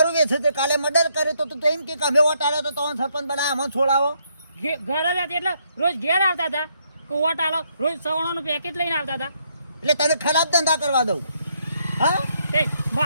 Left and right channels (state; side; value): inverted; both; correlation -0.73